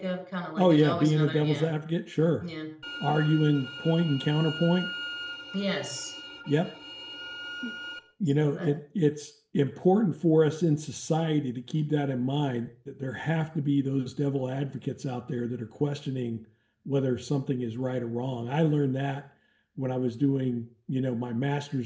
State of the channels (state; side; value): identical; both; correlation 1.00